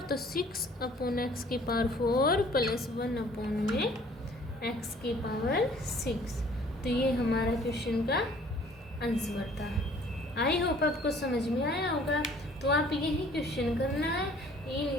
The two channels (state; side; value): normal; both; correlation 0.55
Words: तो 6/x की पावर 4 प्लस 1/x की पावर 6। तो ये हमारा क्वेश्चन का आंसर था। आई होप आपको समझ में आया होगा। तो आप यही क्वेश्चन करना है